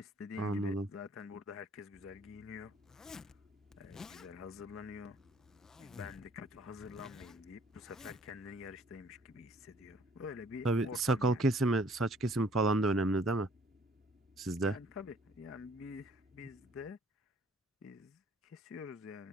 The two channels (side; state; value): both; normal; correlation 0.58